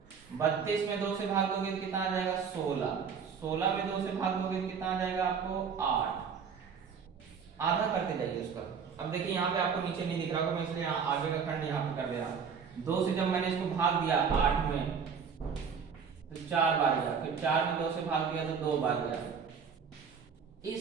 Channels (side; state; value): left; quieter; 6.4 dB